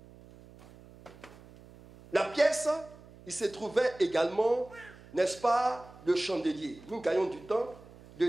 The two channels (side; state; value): right; noise; hum, 21 dB below the sound